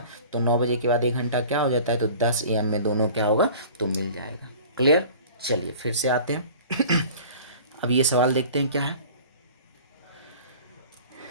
तो 9 बजे के बाद 1 घंटा क्या हो जाता है तो 10 AM में दोनों क्या होगा तो मिल जाएगा। क्लियर। चलिए फिर से आते हैं अब ये सवाल देखते हैं क्या है।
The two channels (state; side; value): inverted; both; correlation -0.44